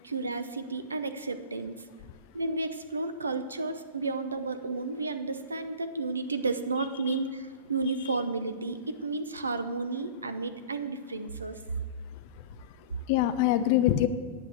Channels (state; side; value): inverted; both; correlation -0.37